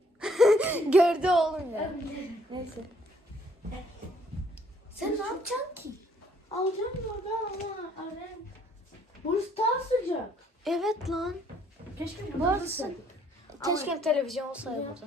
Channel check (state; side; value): normal; both; correlation 0.65